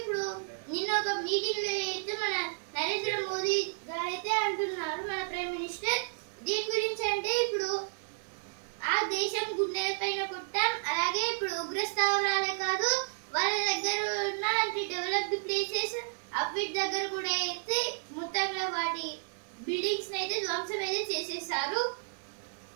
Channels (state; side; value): silent; left; digital silence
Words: నిన్న ఒక మీటింగ్ లో అయితే మన నరేంద్ర మోదీ గారైతే అంటున్నారు, మన ప్రైమ్ మినిస్టర్, దీని గురించి అంటే ఇప్పుడు ఆ దేశం గుండె పైన కొట్టాం. అలాగే ఇప్పుడు ఉగ్ర స్థావరాలే కాదు, వాళ్ళ దగ్గర ఉన్న డెవలప్డ్ ప్లేసెస్ అవిటి దగ్గర కూడా అయితే మొత్తంగా వాటి బిల్డింగ్స్ అయితే ధ్వంసం అయితే చేసేసారు.